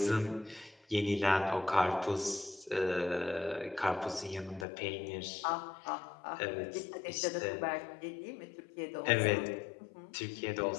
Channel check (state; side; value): drops out; right; at 4.7 s